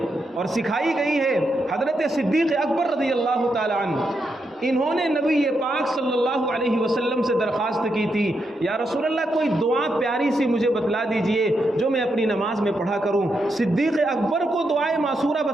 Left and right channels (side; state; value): both; normal; correlation 0.82